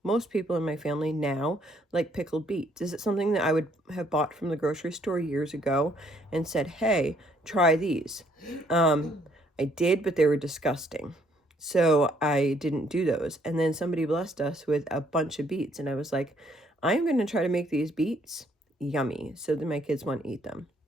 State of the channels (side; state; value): both; normal; correlation 0.67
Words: Most people in my family now like pickled beets. Is it something that I would have bought from the grocery store years ago and said, hey, try these? I did, but they were disgusting. So I didn't do those. And then somebody blessed us with a bunch of beets. And I was like, I'm going to try to make these beets yummy so that my kids want to eat them.